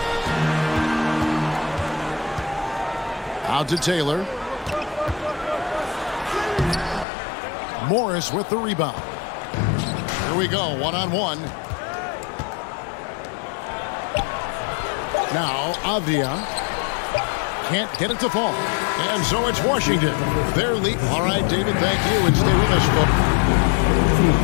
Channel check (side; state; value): right; drops out; at 7.1 s